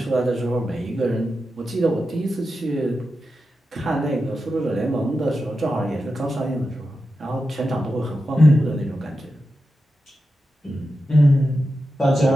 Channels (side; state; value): both; normal; correlation 0.90